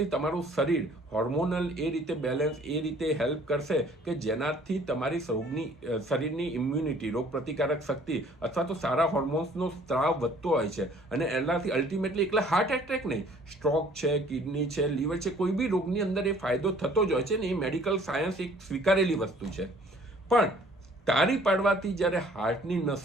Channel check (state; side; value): normal; both; correlation 0.56